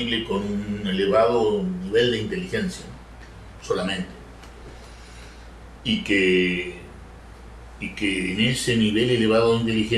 con un elevado nivel de inteligencia, ¿no?, solamente. Y que en ese nivel elevado de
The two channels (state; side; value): identical; both; correlation 1.00